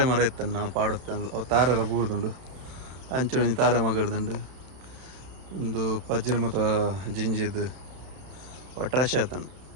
ಮರ ಇತ್ತನ್ನು ನಾವು ಪಾಡುತ್ತೆ ಅವು ತಾರೆಲ್ಲ ಬೂರ್ದುಂಡು ಅಂಚು ತಾರೆ ಮಗಡ್ದುಂಡು ಒಂದು ಪಜ್ಜಿನ ಮತ್ತು ಜಿಂಜಿದು ಒಟ್ರಾಶೆ ಆತನು.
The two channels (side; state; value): left; late; 31 ms